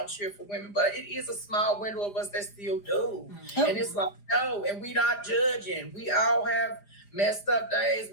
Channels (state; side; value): late; right; 4.9 ms